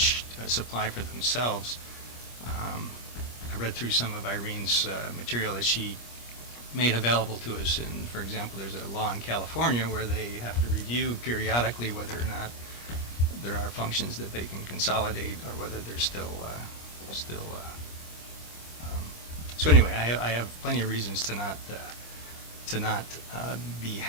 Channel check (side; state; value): right; late; 25 ms